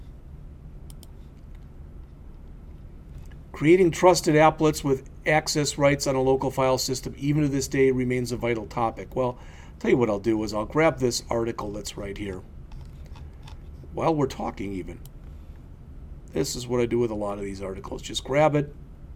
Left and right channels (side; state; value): both; identical; correlation 1.00